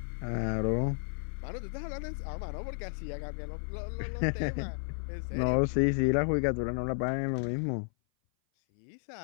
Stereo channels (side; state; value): right; silent; 56 dB below the other